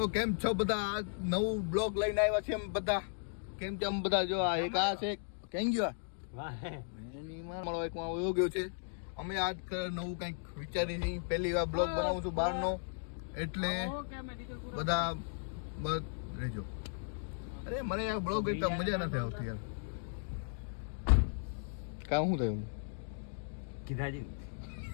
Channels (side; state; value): right; silent; digital silence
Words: કેમ છો બધા? આ નવું બ્લોગ લઈને આવ્યા છે. એમ બધા કેમ છે? આમ બધા જો આ એક આ છે કેમ ગયો એની મારો એક માં વયો ગયો છે. અમે આજ નવું કંઈક વિચારી છીએ. પહેલી વાર બ્લોગ બનાવું છું બહારનો, એટલે બધા બસ રહેજો. અરે મને આ બ્લોગ એકદમ મજા નથી આવતી યાર. કામ શું થયું? કીધાજી